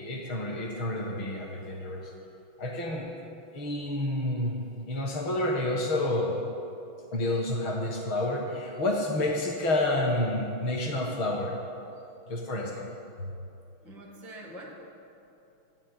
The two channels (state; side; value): late; right; 6.3 ms